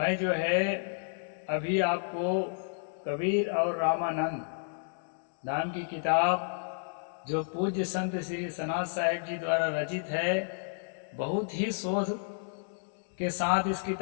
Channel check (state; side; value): silent; right; digital silence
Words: जो है अभी आपको कबीर और रामानंद नाम की किताब, जो पूज्य संत श्री सनातन साहिब जी द्वारा रचित है, बहुत ही शोध के साथ इस